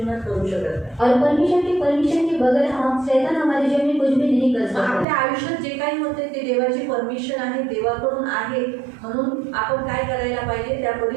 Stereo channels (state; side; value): drops out; left; at 5.1 s